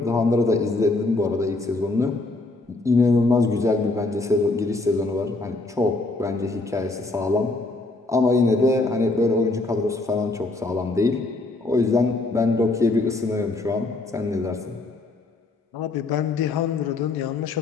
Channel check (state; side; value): quieter; right; 3.1 dB